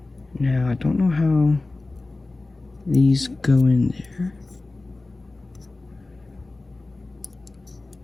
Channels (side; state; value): right; quieter; 3.2 dB